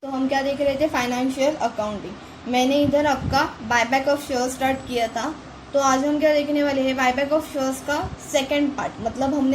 तो हम क्या देख रहे थे, फाइनेंशियल अकाउंटिंग। मैंने इधर आपका बायबैक ऑफ शेयर स्टार्ट किया था। तो आज हम क्या देखने वाले हैं, बायबैक ऑफ शेयर्स का सेकंड पार्ट। मतलब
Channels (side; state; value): both; identical; correlation 1.00